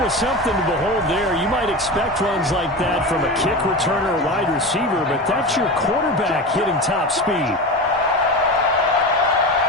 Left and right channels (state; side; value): normal; both; correlation 0.25